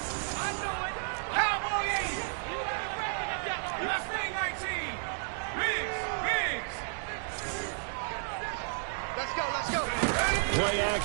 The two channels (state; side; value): silent; left; 56 dB below the other